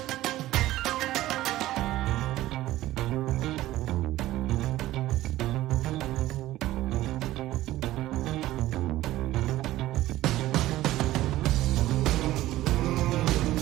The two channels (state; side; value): quieter; left; 15.6 dB